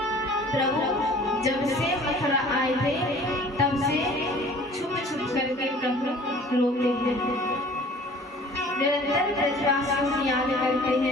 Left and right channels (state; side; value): normal; both; correlation 0.49